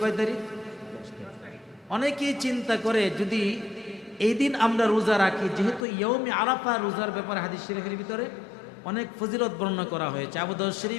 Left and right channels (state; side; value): drops out; right; at 5.9 s